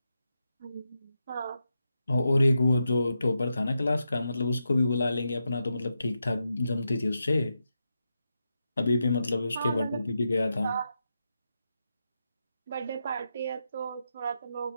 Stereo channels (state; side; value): inverted; both; correlation -0.87